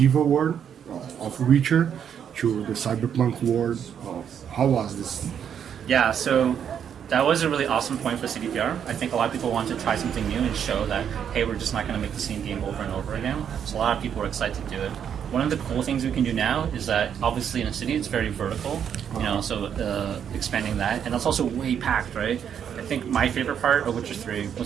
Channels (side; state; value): left; quieter; 8.4 dB